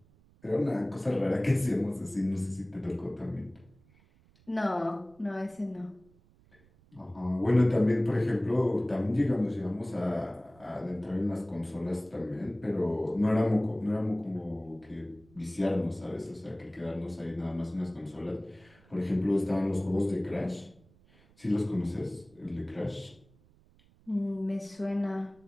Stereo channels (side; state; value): right; noise; rumble, 29 dB below the sound